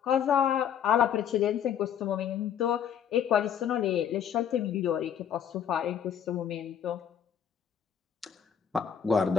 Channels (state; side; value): quieter; right; 8.7 dB